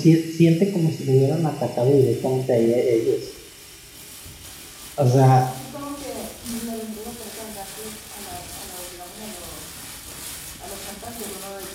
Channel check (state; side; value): identical; both; correlation 1.00